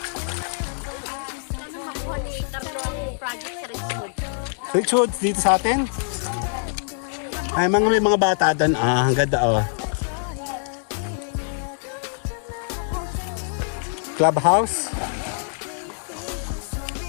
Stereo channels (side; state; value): right; silent; 62 dB below the other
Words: Richard, dito sa atin? Ay, may mga bata doon. Ah, ang ganda oh. Clubhouse.